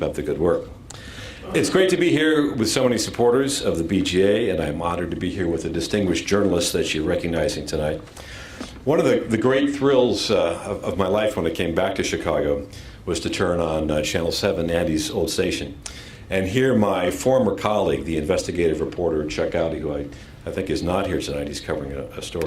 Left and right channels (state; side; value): identical; both; correlation 1.00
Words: up the good work. It's great to be here with so many supporters of the BJA, and I'm honored to be here with a distinguished journalist that you're recognizing tonight. One of the great thrills of my life when I came back to Chicago was to turn on Channel 7, Andy's old station, and hear my former colleague, the investigative reporter Chuck Gowdy, who I think is not here tonight. He's covering a